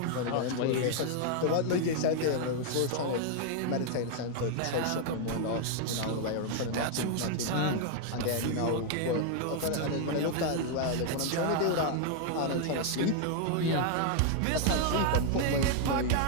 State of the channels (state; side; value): different; both; correlation 0.00